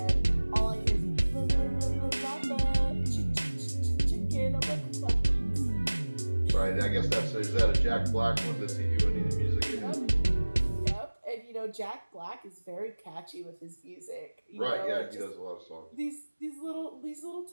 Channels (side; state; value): both; inverted; correlation -1.00